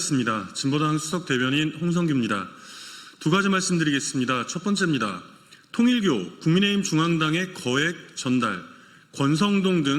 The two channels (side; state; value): both; identical; correlation 1.00